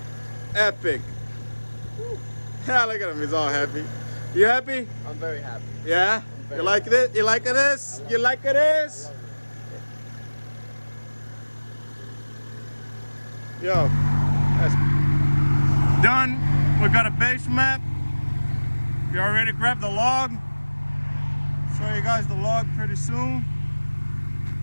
Epic. Yeah, look at him, he's all happy. You happy? I'm very happy. Yeah? You like it? You like this? You like this? Yo, that's done. We got a base map. You already grabbed the log. Show you guys the log pretty soon.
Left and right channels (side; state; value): both; inverted; correlation -1.00